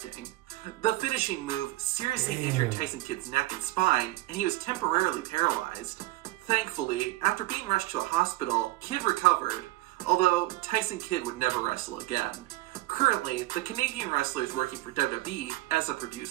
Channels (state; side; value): quieter; left; 18.8 dB